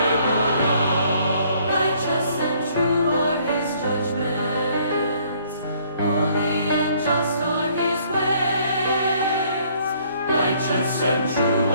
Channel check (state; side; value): inverted; both; correlation -0.62